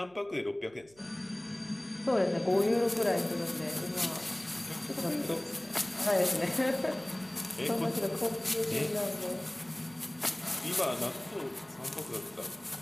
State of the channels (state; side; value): noise; right; hum, 28 dB below the sound